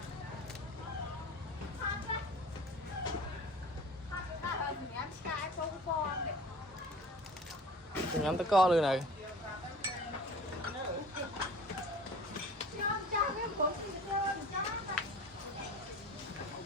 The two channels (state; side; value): normal; both; correlation 0.42